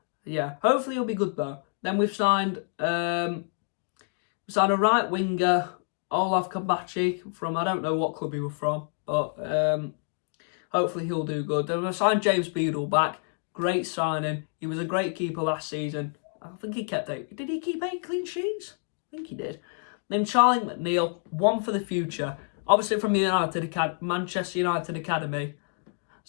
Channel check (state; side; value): silent; right; 60 dB below the other